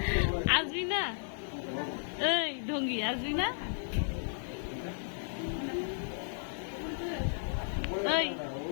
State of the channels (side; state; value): right; silent; digital silence